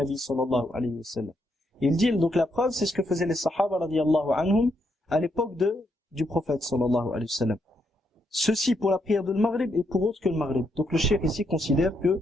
صلى الله عليه وسلم. Il dit, donc la preuve, c'est ce que faisaient les sahaba radiyallahu anhum à l'époque du prophète sallallahu alayhi wa sallam. Ceci pour la prière de Maghrib et pour autre que le Maghrib. Donc le cheikh ici considère que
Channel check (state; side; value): normal; both; correlation 0.78